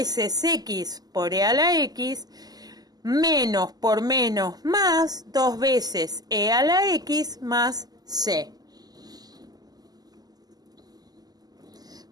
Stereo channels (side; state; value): left; late; 0.19 ms